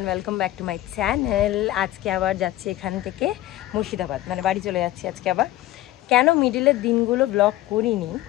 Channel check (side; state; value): right; quieter; 15.4 dB